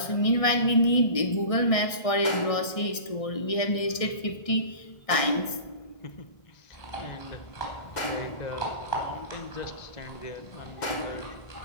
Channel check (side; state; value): right; late; 1.6 ms